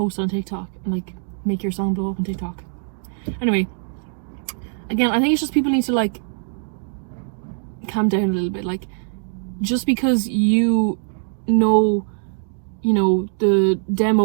on TikTok and like make your song blow up on TikTok. Anyway, again, I think it's just people need to like calm down a little bit. Like, just because you know the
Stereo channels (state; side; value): silent; left; digital silence